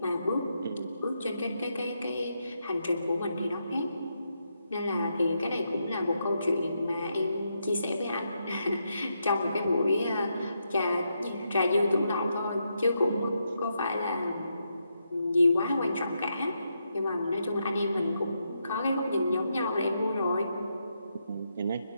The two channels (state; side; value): inverted; both; correlation -0.82